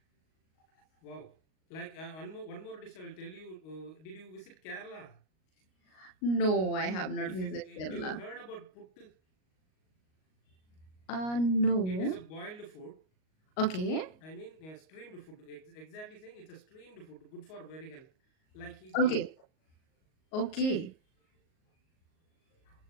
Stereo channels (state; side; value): late; right; 38 ms